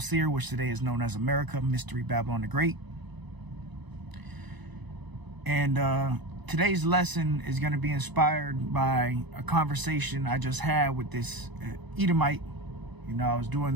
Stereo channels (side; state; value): left; late; 1.0 ms